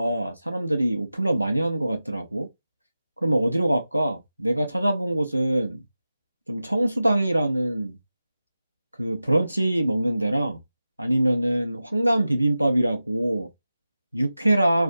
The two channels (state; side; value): inverted; both; correlation -0.94